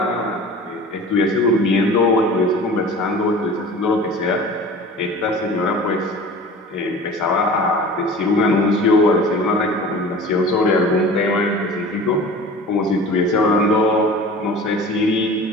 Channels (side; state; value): both; normal; correlation 0.40